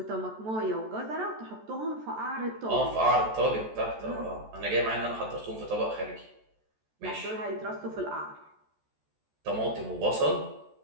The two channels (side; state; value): left; late; 14 ms